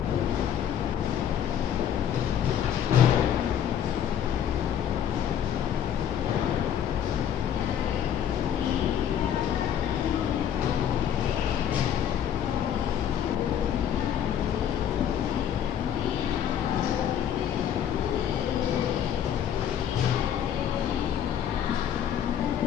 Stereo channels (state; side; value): quieter; right; 9.5 dB